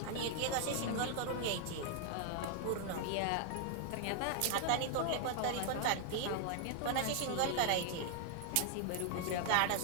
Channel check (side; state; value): both; different; correlation 0.00